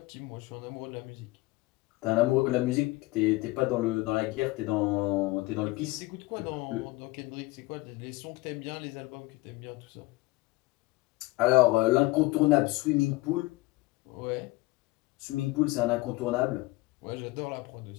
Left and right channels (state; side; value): quieter; right; 21.6 dB